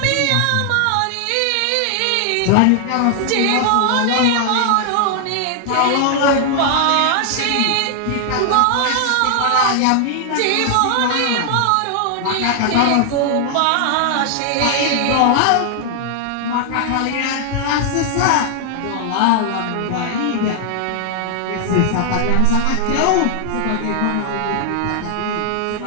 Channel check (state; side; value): different; both; correlation 0.00